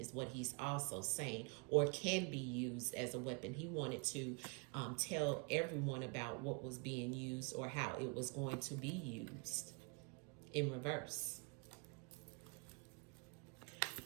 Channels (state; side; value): quieter; left; 33.2 dB